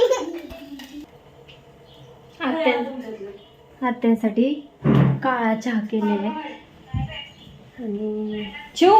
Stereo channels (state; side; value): identical; both; correlation 1.00